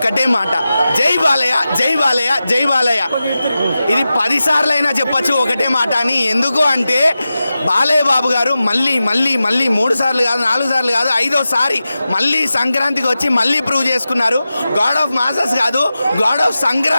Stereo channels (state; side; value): inverted; both; correlation -0.93